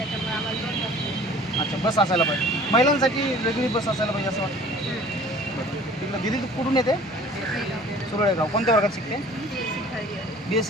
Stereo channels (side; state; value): both; normal; correlation 0.48